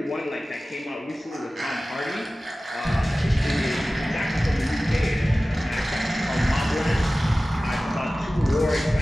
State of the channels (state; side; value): normal; both; correlation 0.97